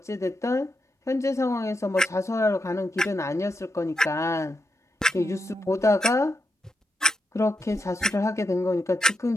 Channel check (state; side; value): normal; both; correlation 0.84